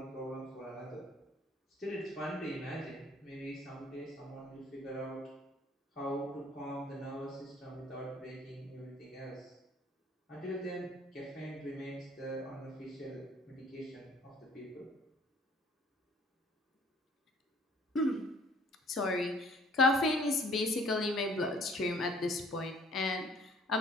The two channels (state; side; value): normal; both; correlation 0.57